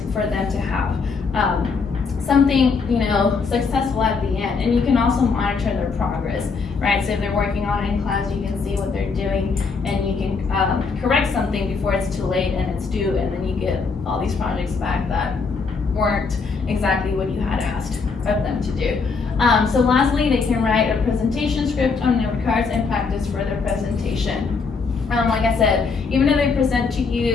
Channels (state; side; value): quieter; right; 4.9 dB